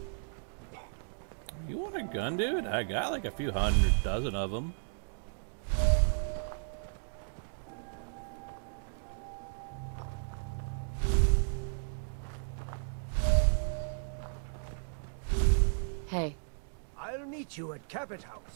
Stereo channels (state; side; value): silent; left; digital silence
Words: You want a gun, dude? I got like a few hundred dozen of them. Hey. I'll meet you at Cabot